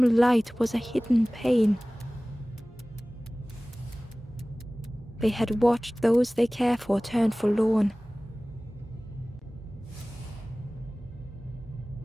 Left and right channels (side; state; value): both; normal; correlation 0.98